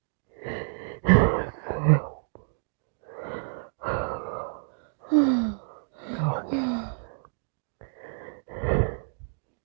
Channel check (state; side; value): silent; left; digital silence